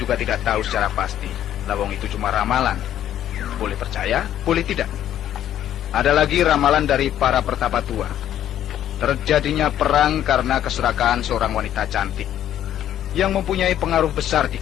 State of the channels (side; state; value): right; quieter; 11.3 dB